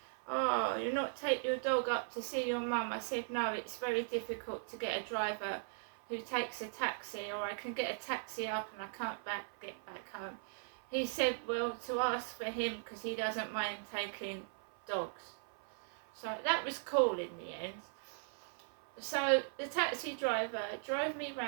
oh, you'll not take your dog up to see your mum? I said, no, it's very difficult to get a driver who takes a taxi, or I can get a taxi up and I can't get back home. He said, well, to ask for him because he doesn't mind taking dogs. So that was cool in the end. So the taxi driver drove me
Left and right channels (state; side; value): silent; left; 52 dB below the other